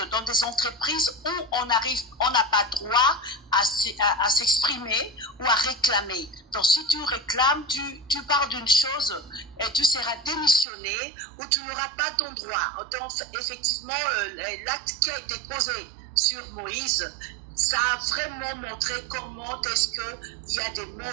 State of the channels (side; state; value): left; drops out; at 10.7 s